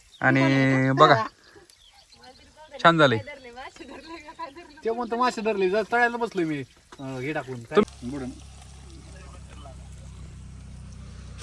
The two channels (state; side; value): identical; both; correlation 1.00